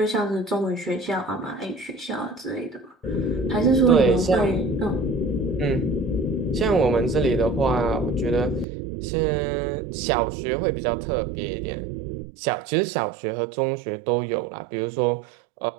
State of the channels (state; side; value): drops out; left; at 8.7 s